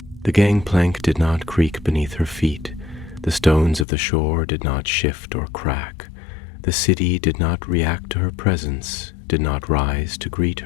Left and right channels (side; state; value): right; drops out; at 3.9 s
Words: The gangplank did not creak beneath her feet. The stones of the shore did not shift or crack. The city did not react to her presence, did not rise to greet